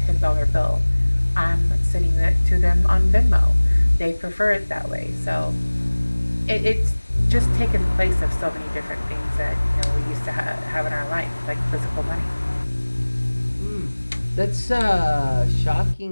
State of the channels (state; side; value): inverted; both; correlation -1.00